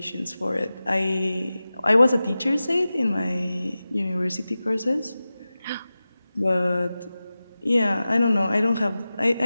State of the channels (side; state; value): both; inverted; correlation -0.95